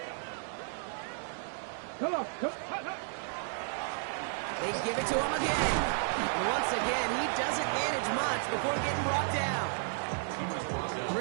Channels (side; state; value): left; silent; digital silence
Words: Come on. They give it to him again. And once again, he doesn't manage much before getting brought down.